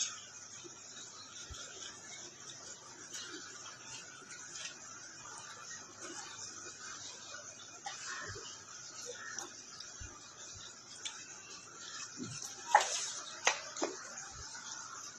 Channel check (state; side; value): identical; both; correlation 1.00